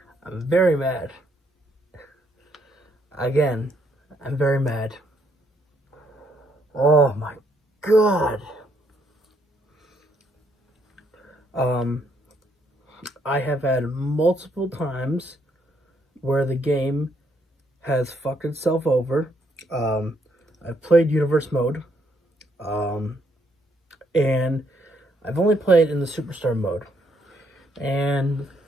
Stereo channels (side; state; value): both; normal; correlation 0.72